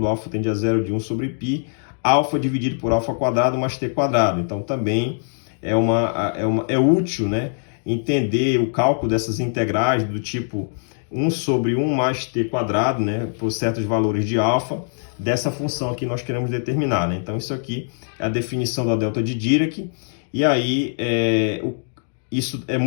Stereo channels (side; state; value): right; silent; digital silence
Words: alfa tende a 0 de 1 sobre π, alfa dividido por alfa quadrado mais t quadrado. Então também é útil, né, entender o cálculo dessas integrais do tipo 1 sobre 1 mais t quadrado, né, por certos valores de alfa, dessa função aqui nós queremos determinar, né? Então isso aqui é a definição da delta de Dirac, e aí isso é